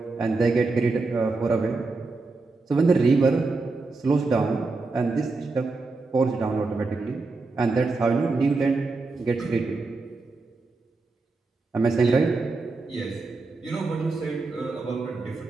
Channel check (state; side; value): quieter; left; 3.7 dB